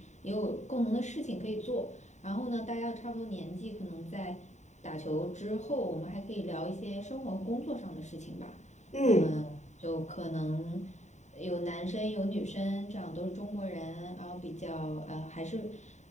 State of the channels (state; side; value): late; right; 0.34 ms